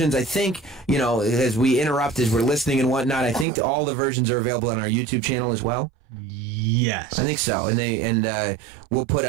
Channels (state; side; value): drops out; left; at 3.5 s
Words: I think, as we interrupt, as we're listening and whatnot, I think all the versions are available on our YouTube channel as well. Yes. I think so. And we'll put